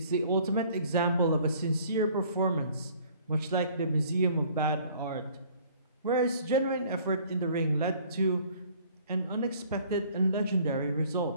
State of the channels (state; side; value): inverted; both; correlation -0.55